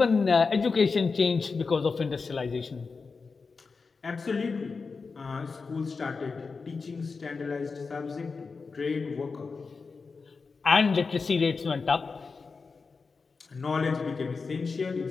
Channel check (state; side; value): quieter; right; 4.6 dB